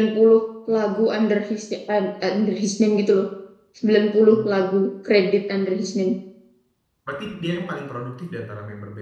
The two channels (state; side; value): identical; both; correlation 1.00